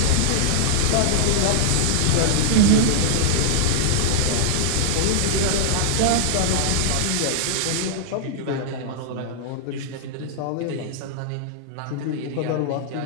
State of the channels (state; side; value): different; both; correlation -0.01